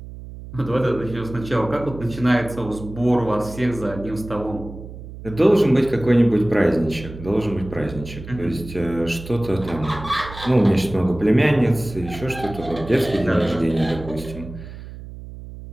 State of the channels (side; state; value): right; noise; hum, 13 dB below the sound